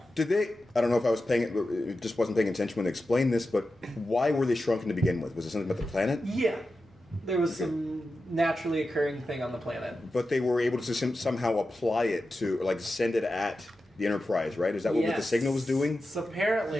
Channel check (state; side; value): normal; both; correlation 0.91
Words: Did they? I don't know if I was it just wasn't paying attention when they explained this, but why were they shrunken to begin with? Was it something about the planet? Yeah. There was some naturally occurring thing on the planet. But they were able to somehow apply it to, send it at the Enterprise, right? Is that what the signal was doing? So